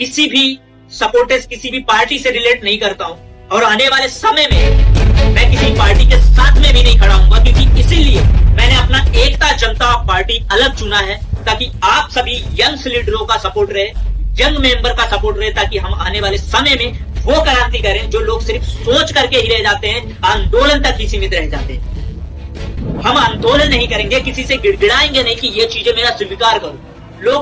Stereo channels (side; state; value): both; identical; correlation 1.00